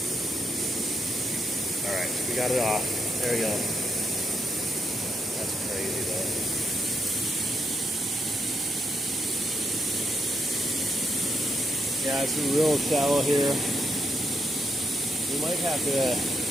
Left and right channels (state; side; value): normal; both; correlation 0.80